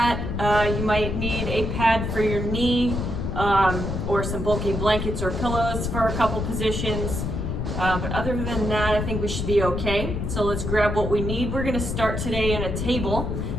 You might need a pad for your knee, or some bulky blankets or pillows for a couple positions. But other than that, I think we should be okay. So let's grab what we need. We're gonna start today in a table.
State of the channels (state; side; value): noise; left; rumble, 3 dB below the sound